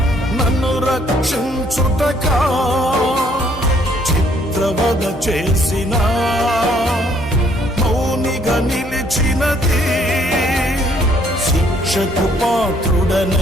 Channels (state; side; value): normal; both; correlation 0.65